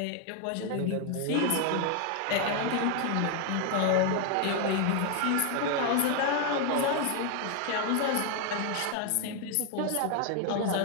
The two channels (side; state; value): both; different; correlation 0.01